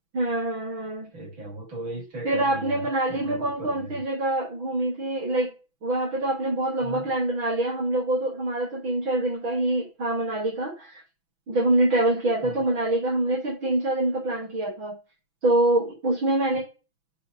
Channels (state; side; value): late; left; 6.1 ms